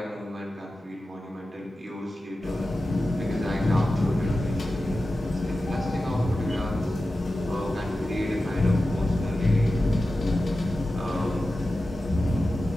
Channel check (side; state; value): both; normal; correlation 0.93